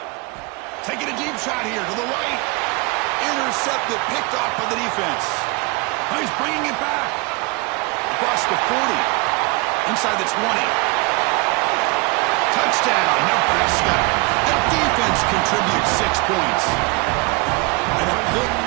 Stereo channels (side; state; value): left; quieter; 26.9 dB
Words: Taking a deep shot here to the right. Intercepted, picked off by the defense. Oh, he's bringing it back. Across the 40. Inside the 20. Touchdown, Nebraska. The defense contributes 6 points. And a pick